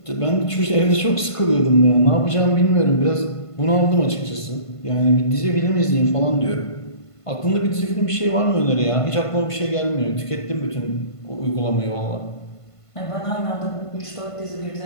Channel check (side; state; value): right; late; 1.5 ms